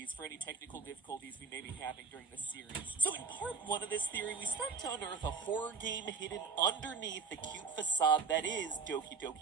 for any technical difficulties we may be having during this series. So in part 1 of this theory, we start to unearth a horror game hidden underneath the cute facade that is Doki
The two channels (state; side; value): quieter; left; 5.2 dB